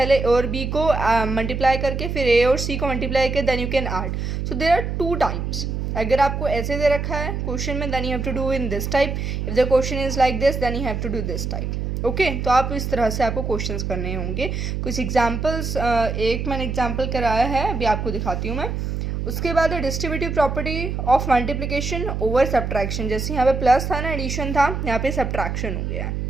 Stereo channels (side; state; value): right; noise; hum, 3 dB below the sound